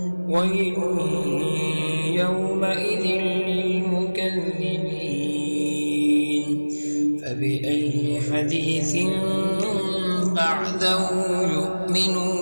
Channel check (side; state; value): both; inverted; correlation -1.00